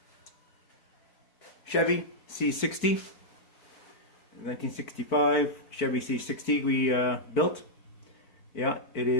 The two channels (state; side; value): late; right; 4.5 ms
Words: Chevy C60, 1965 Chevy C60 we built. Yeah, it